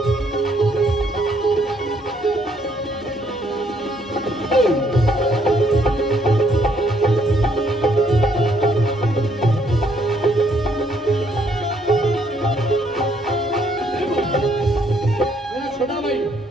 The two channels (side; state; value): both; normal; correlation 0.69